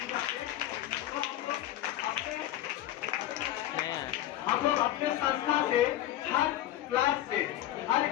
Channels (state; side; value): quieter; right; 13.3 dB